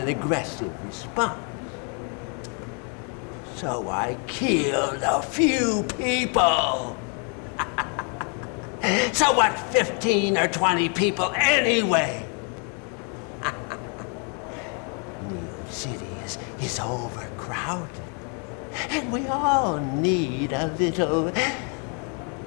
aggressive response. So I killed a few people. So what, 15 or 20 people anyway? Neo City is overcrowded, and we all need a little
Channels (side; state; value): right; quieter; 38.5 dB